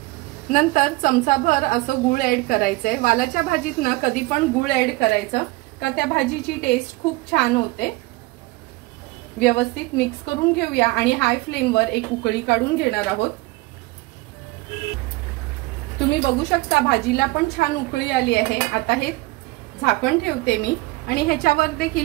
नंतर चमचाभर असं गूळ ऍड करायचंय। वालाच्या भाजीत ना कधी पण गूळ ऍड करायचं का त्या भाजीची टेस्ट खूप छान होते। व्यवस्थित मिक्स करून घेऊया आणि हाय फ्लेमवर एक उकळी काढून घेणार आहोत। तुम्ही बघू शकता भाजीला पण छान उकळी आली आहे। आता हे झाकण ठेवते मी आणि ह्याच्यावर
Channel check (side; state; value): left; quieter; 21.8 dB